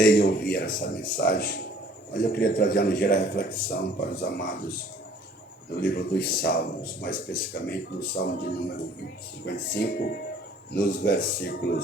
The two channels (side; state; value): both; normal; correlation 0.55